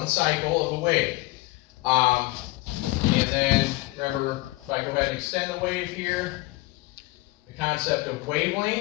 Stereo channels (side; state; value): right; quieter; 21.4 dB